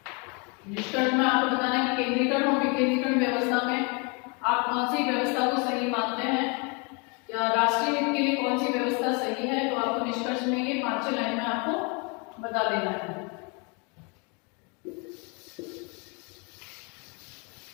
निष्कर्ष में आपको बताना है कि केंद्रीकरण और विकेंद्रीकरण व्यवस्था में आप कौन सी व्यवस्था को सही मानते हैं या राष्ट्रीय हित के लिए कौन सी व्यवस्था सही है। तो आपको निष्कर्ष में ये 5-6 लाइन में आपको बता देना है।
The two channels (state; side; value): quieter; right; 32.6 dB